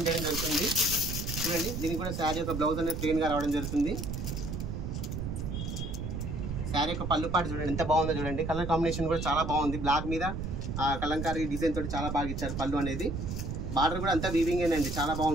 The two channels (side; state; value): right; noise; rumble, 4 dB below the sound